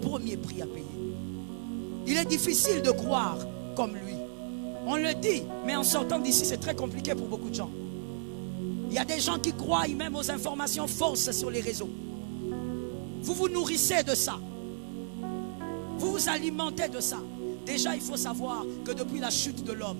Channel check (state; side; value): silent; left; 56 dB below the other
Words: prix à payer. Il est difficile de croire comme lui. On le dit, mais en sortant d'ici, c'est très compliqué pour beaucoup de gens. Il y a des gens qui croient même aux informations fausses sur les réseaux. Vous vous nourrissez de ça. Vous vous alimentez de ça. Déjà, il faut savoir que depuis la chute de